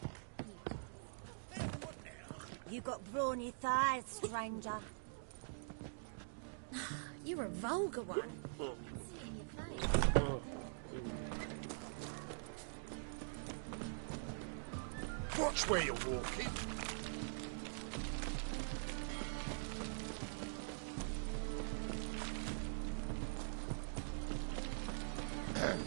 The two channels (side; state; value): left; silent; digital silence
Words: You choose. What now? You got brawny thighs, stranger. You're a vulgar one. Can see it in your face. Watch where you're walking.